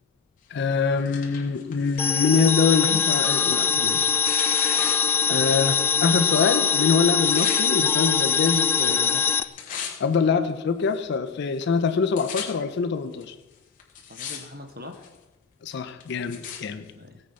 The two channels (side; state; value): right; quieter; 5.8 dB